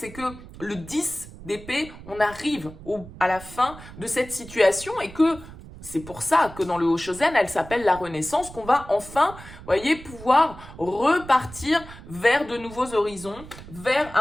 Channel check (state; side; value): noise; right; rumble, 16 dB below the sound